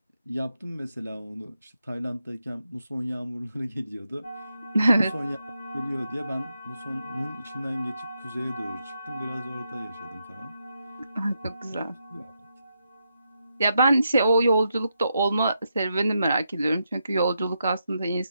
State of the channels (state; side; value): inverted; both; correlation -0.83